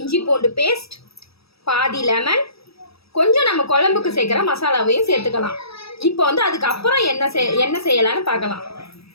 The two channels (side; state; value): right; late; 0.77 ms